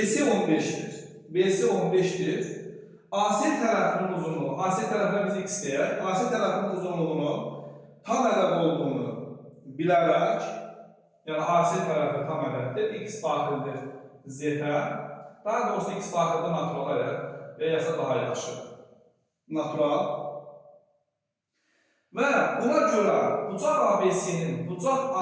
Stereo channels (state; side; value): identical; both; correlation 1.00